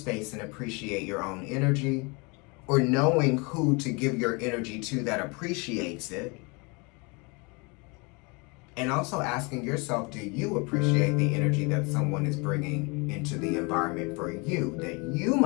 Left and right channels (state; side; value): quieter; right; 29.5 dB